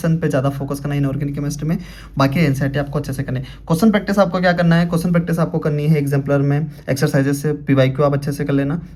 पे ज़्यादा फोकस करना इनऑर्गेनिक केमिस्ट्री में, बाकी एनसीईआरटी आपको अच्छे से करनी है। क्वेश्चन प्रैक्टिस आपको क्या करना है, क्वेश्चन प्रैक्टिस आपको करनी है एग्जाम्पलर में एक्सरसाइजेस से, पीवाईक्यू आप अच्छे से कर लेना,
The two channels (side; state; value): both; identical; correlation 1.00